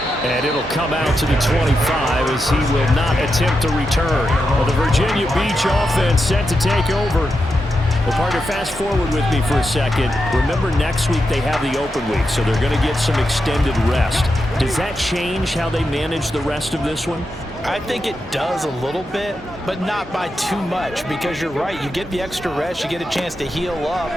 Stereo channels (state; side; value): normal; both; correlation 0.87